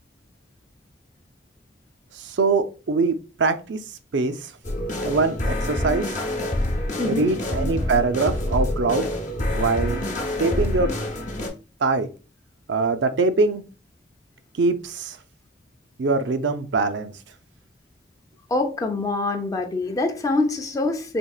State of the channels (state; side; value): normal; both; correlation 0.22